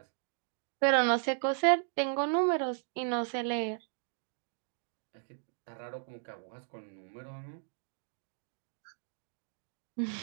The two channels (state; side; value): silent; left; digital silence